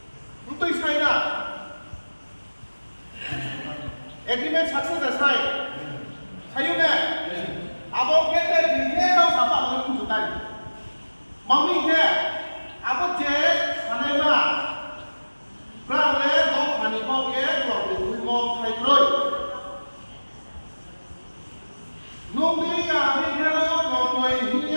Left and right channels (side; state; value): both; inverted; correlation -1.00